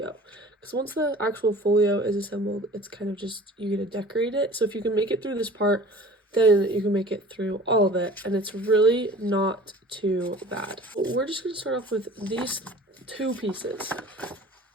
because once the actual folio is assembled, it's kind of just, you get to decorate it. So if you can make it through this part, then you can make it through all of it, and it's really not too bad. We're just going to start off with these two pieces,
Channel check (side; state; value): both; normal; correlation 0.44